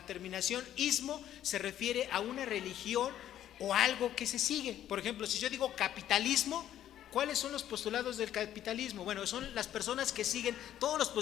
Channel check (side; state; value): right; quieter; 11.5 dB